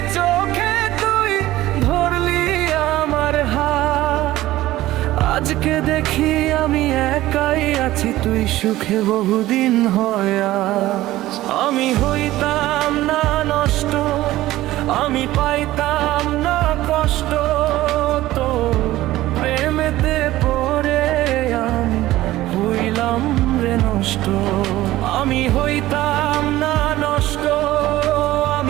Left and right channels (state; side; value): quieter; left; 16.0 dB